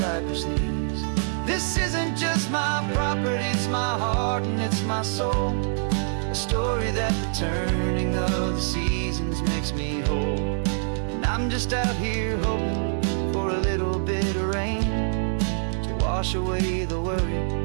knees. This isn't just my property, it's my heart and it's my soul. A story that the turning of the seasons makes me whole. And I'm just out here hoping for a little bit of rain to wash away the worry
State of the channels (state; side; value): silent; left; digital silence